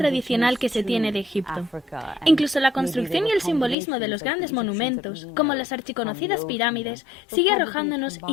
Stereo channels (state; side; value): drops out; right; at 3.8 s